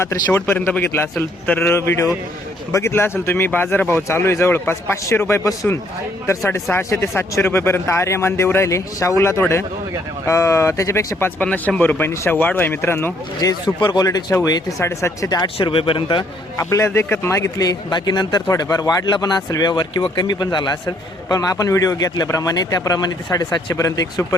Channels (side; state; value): both; normal; correlation 0.67